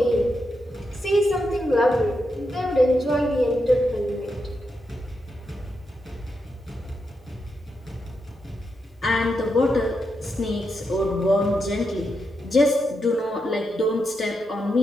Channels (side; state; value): both; normal; correlation 0.84